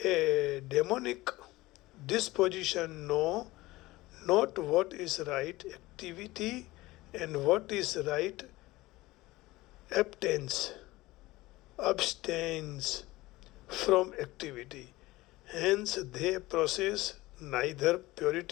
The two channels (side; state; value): right; quieter; 19.2 dB